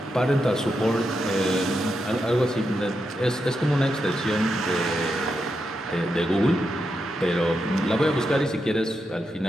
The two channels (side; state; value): both; normal; correlation 0.85